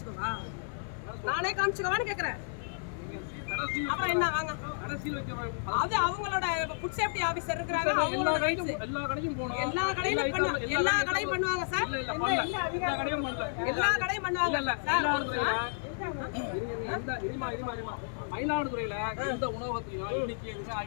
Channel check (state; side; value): silent; right; 56 dB below the other